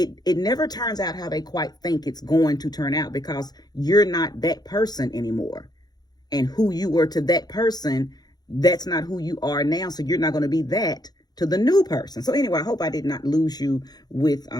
never turns out how they quite think it's going to turn out, because you're not that person anymore. And who you were to that person, that's not who you are now. So you're not going to be that to the new person. So anyway, I hope I did not lose you with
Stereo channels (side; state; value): right; late; 0.19 ms